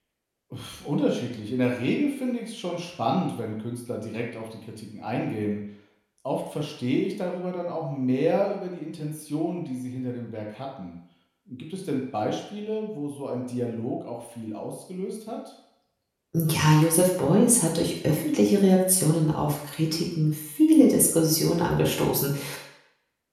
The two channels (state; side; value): identical; both; correlation 1.00